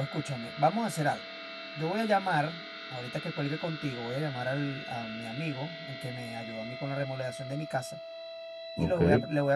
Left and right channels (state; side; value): identical; both; correlation 1.00